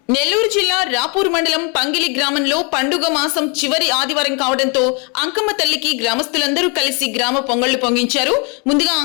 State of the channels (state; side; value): quieter; right; 34.0 dB